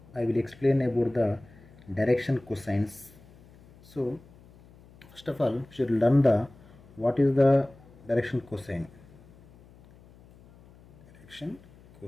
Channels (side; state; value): left; noise; hum, 24 dB below the sound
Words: I will explain about the direction cosines. So first of all, we should learn the what is the direction cosine. Direction